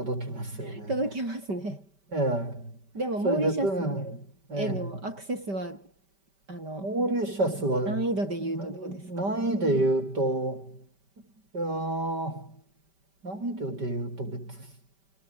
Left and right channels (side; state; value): left; late; 5.1 ms